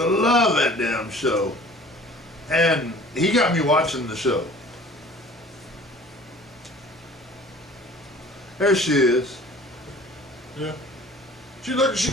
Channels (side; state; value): both; normal; correlation 0.47